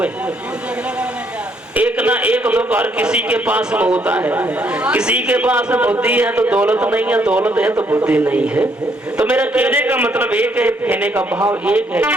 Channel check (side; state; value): both; normal; correlation 0.70